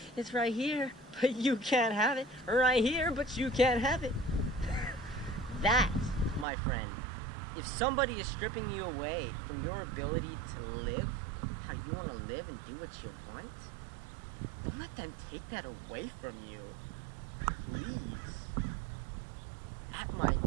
it's right here, but you can't have it. Right here, but you can't have it. That, my friend, if somebody is stripping you away from your ability to live how you want to live and do what you want, don't let them take that away from you. Please. At my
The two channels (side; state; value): left; drops out; at 6.5 s